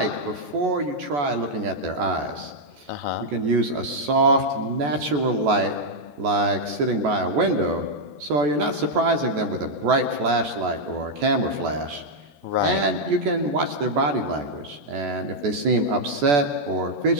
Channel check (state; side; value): late; left; 14 ms